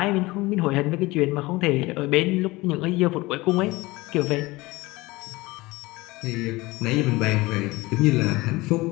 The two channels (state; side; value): quieter; right; 21.1 dB